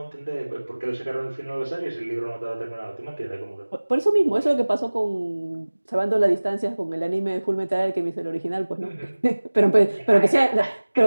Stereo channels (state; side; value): inverted; both; correlation -1.00